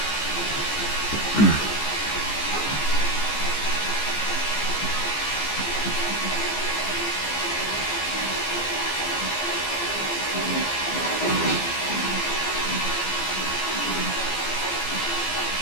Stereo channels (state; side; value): late; right; 14 ms